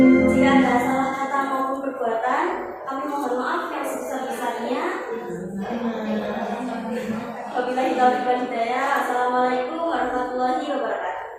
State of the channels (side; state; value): both; identical; correlation 1.00